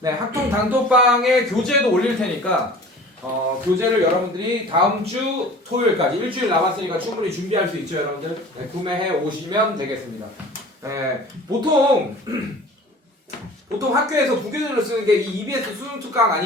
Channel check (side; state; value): both; normal; correlation 0.43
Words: 학통 단톡방에 교재도 올릴 테니까 교재를 여러분들이 다음 주 토요일까지 일주일 남았으니까 충분히 준비할 수 있죠, 여러분들. 구매해 오시면 되겠습니다. 보통 학교에서 부교재로 쓰는 게 이 EBS 수능 특강